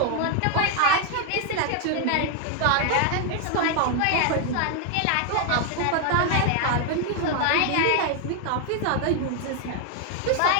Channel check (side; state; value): both; different; correlation 0.01